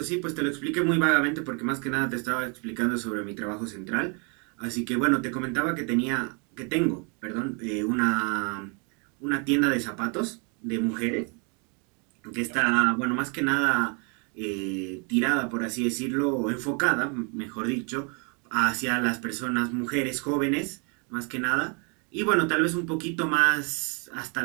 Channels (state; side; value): quieter; left; 35.8 dB